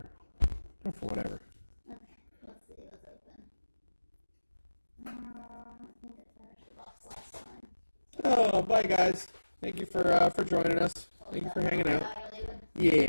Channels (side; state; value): both; inverted; correlation -1.00